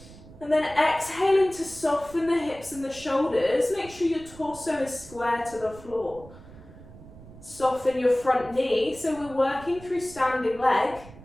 and then exhaling to soften the hips and the shoulders? Make sure your torso is square to the floor. Soften your front knee, so we're working through standing leg.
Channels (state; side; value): noise; right; rumble, 19 dB below the sound